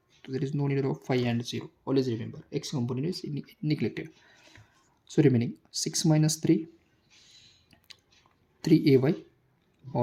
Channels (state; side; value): identical; both; correlation 1.00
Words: तो there is no need of 5 and 0. Always remember X component is neglected. So remaining 6 - 3 3ay